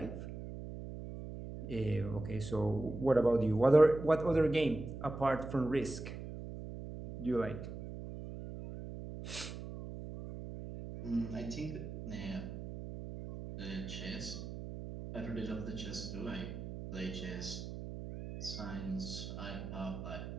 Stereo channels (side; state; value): right; noise; hum, 9 dB below the sound